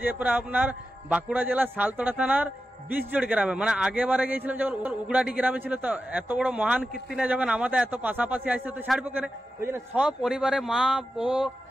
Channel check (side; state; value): both; normal; correlation 0.91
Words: যে পরে আপনার বাঁকুড়া জেলার সালতোড়া থানার বিশজোড় গ্রামে, মানে আগেবারে গিয়েছিলাম যখন উগড়াটি গ্রামে ছিল, তো এত বড় মহান কীর্তিনে যখন আমাদের এত পাশাপাশি আসছে তো ছাড়বো কেন, ওই জন্য সব পরিবারে মা ও